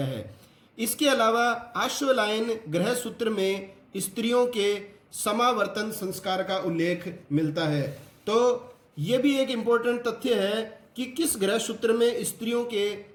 है। इसके अलावा आश्वलायन ग्रह सूत्र में स्त्रियों के समावर्तन संस्कार का उल्लेख मिलता है। तो ये भी एक इंपॉर्टेंट तथ्य है कि किस ग्रह सूत्र में स्त्रियों के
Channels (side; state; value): both; identical; correlation 1.00